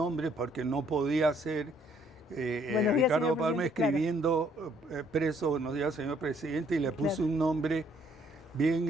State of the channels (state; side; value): normal; both; correlation 0.65